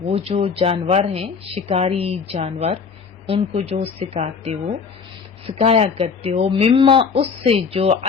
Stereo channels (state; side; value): quieter; right; 5.6 dB